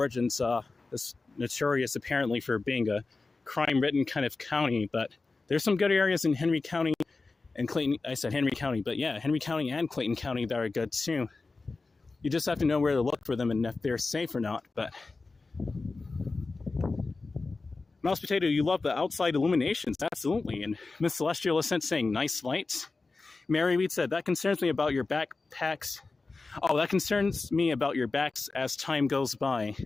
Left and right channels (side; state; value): right; quieter; 3.8 dB